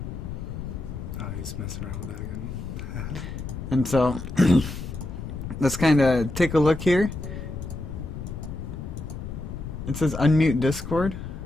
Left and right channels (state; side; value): noise; left; rumble, 8 dB below the sound